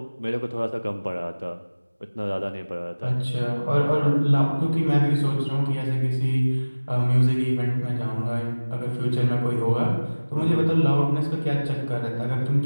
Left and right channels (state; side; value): inverted; both; correlation -1.00